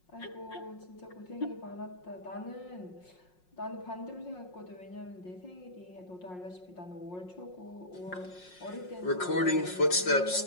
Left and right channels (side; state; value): right; late; 5.5 ms